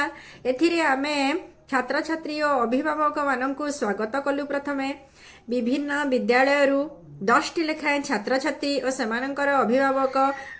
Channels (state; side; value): identical; both; correlation 1.00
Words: एथिरे आमे छात्र छात्री और अभिभावक मानक स्वागत कलु। प्रथमे विभिन्न विद्यालय 10 टी लेखाएं छात्र छात्री और सेमानंकर अभिभावक